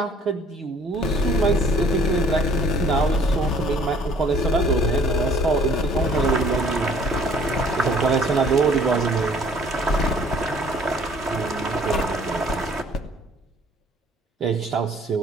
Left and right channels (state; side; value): normal; both; correlation 0.56